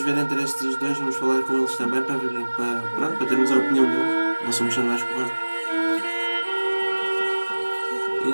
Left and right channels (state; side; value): inverted; both; correlation -1.00